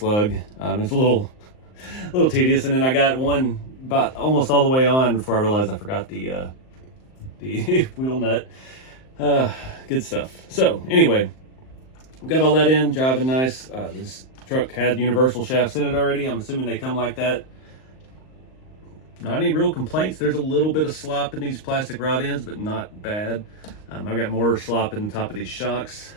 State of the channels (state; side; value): late; right; 38 ms